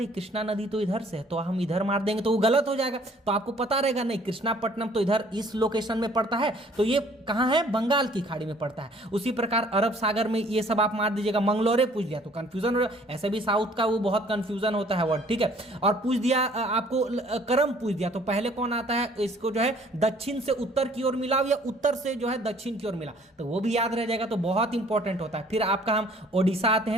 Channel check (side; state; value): both; normal; correlation 0.57